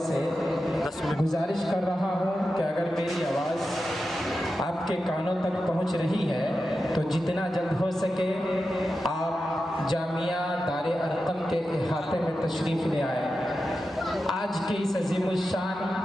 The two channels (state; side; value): normal; both; correlation 0.91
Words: गुजारिश कर रहा हूं कि अगर मेरी आवाज़ आपके कानों तक पहुंच रही है तो जितना जल्द हो सके आप जामिया दारे अरकम के अहाते में तशरीफ़ ले आए। आज के इस अजीमुल शान